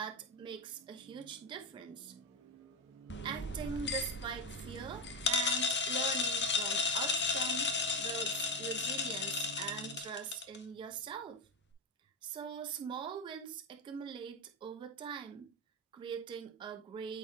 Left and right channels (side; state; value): both; normal; correlation 0.12